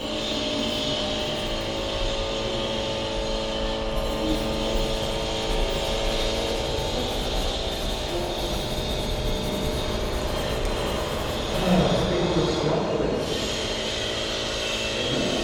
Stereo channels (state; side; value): identical; both; correlation 1.00